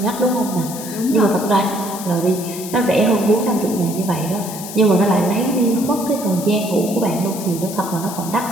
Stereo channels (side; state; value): left; noise; hiss, 11 dB below the sound